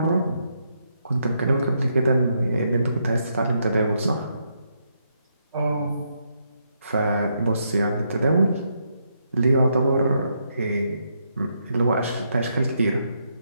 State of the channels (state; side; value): inverted; both; correlation -0.78